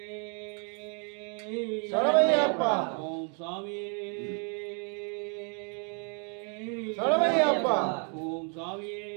சரவையப்பா ஓம் சாமியே சரவையப்பா ஓம் சாமியே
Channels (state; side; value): quieter; left; 39.7 dB